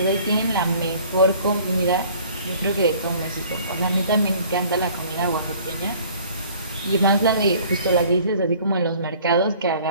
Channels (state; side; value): inverted; both; correlation -0.53